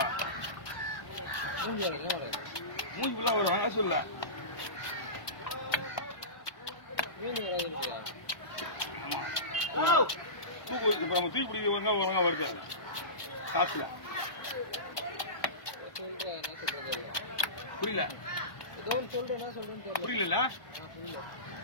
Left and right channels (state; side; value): late; right; 1.1 ms